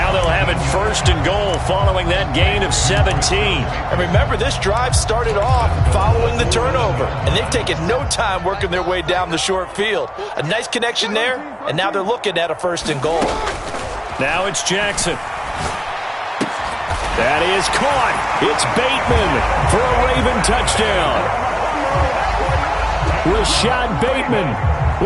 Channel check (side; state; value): both; identical; correlation 1.00